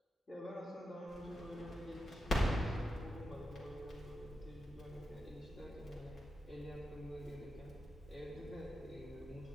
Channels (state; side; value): normal; both; correlation 0.88